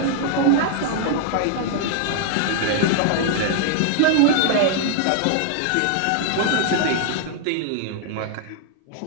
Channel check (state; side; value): different; both; correlation 0.00